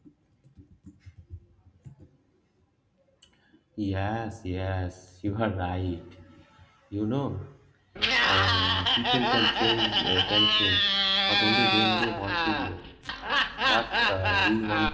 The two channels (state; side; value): identical; both; correlation 1.00